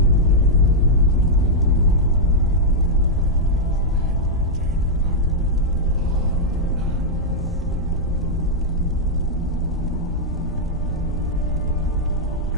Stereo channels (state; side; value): normal; both; correlation -0.05